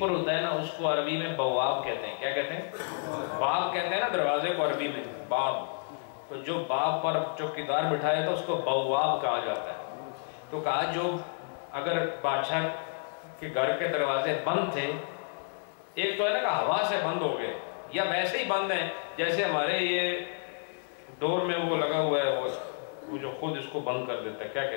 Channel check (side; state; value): right; silent; 58 dB below the other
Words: ہوتا ہے نا، اس کو عربی میں بواب کہتے ہیں۔ کیا کہتے ہیں؟ باب کہتے ہیں نا دروازے کو عربی میں، باب۔ تو جو باب پر چوکیدار بٹھایا تھا اس کو بواب کہا جاتا ہے۔ تو کہا جو اگر بادشاہ کے گھر کے دروازے بند تھے، ایک تو ہے نا کہ ہوا سے بند ہو گئے یا ویسے ہی بند ہیں، جیسے ہمارے یہ ڈور میں وہ لگا ہوا ہے، وہ جو خود اس کو بند کر دیتا ہے، کیا